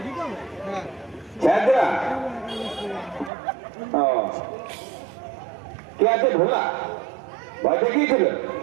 কে আছে? ভোলা ভয় দেখিয়েছিল?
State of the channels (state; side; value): drops out; left; at 3.3 s